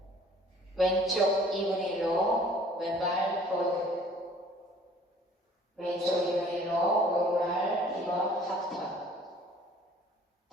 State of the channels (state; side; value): normal; both; correlation 0.53